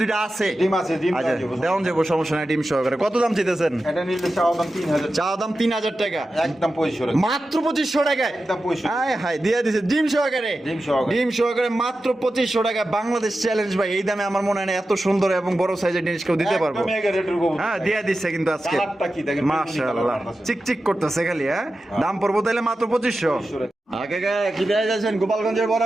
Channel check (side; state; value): both; normal; correlation 0.92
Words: আছে। ডিম আছে, ডিম আচ্ছা দেওয়া যাবে। দেওয়ান যাবো, সমস্যা নাই, ডিম সহকারে। কত দাম চাইতেছেন? এটা নিলে চাওয়া দাম 3000, চা দাম 3000 টাকা, একদম 2500 টাকা। মাত্র 2500 টাকায়। একদম 2500। হায় হায়, দিয়ে দিছে ডিম সহকারে। ডিম সহকারে। ডিম সহকারে মাত্র 2500 টাকা। বাংলাদেশ চ্যালেঞ্জ ভাই, এই দামে আমার মনে হয় না এত সুন্দর এবং বড় সাইজের জিনিস কেউ দিতে পারবো। একদম এগারো রেটের কবুতর। হ্যাঁ, দিয়ে দিচ্ছে কিন্তু আজকে। কালারটা কি দেখেন, মাশাআল্লাহ, চিকচিক করতেছে খালি। হ্যাঁ, দাম পড়বো তাহলে মাত্র 2500। 2500 টাকা। আগে কি দেয়া যাচ্ছেন? গোপালগঞ্জের বড়